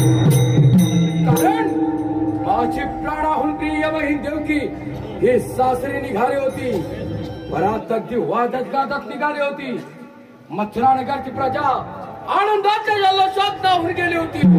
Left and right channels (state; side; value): identical; both; correlation 1.00